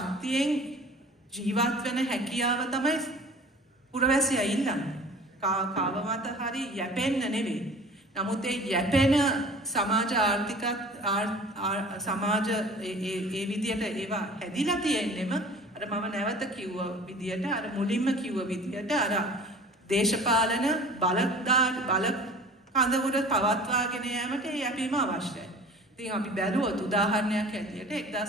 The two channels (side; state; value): both; normal; correlation 0.44